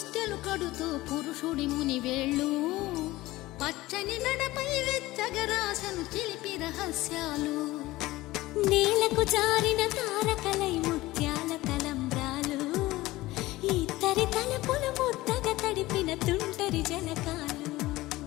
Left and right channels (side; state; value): right; quieter; 18.3 dB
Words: కడుతూ పురుషుడి ముని వేళ్ళు పచ్చని నడపై వెచ్చగరాసను చిలిపి రహస్యాలు నేలకు జారిన తారకలై ముత్యాల తలంబ్రాలు ఇద్దరి తలపులు ముద్దగా తడిపిన తుంటరి జలకాలు